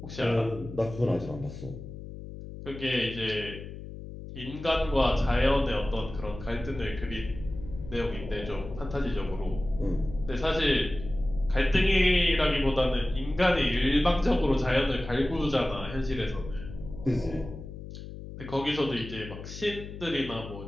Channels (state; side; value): noise; left; hum, 11 dB below the sound